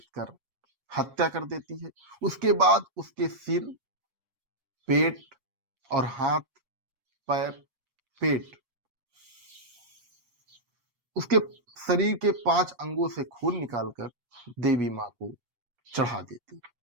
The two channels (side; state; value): left; late; 8.3 ms